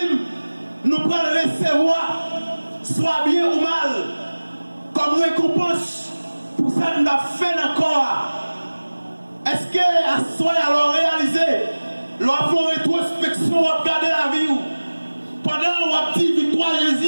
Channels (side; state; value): both; inverted; correlation -1.00